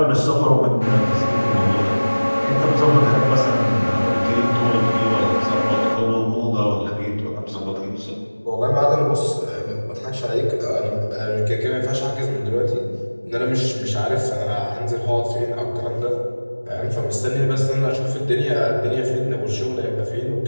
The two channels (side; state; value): both; inverted; correlation -1.00